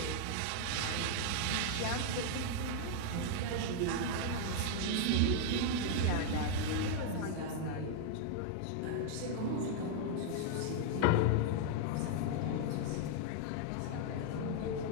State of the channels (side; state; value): both; different; correlation 0.00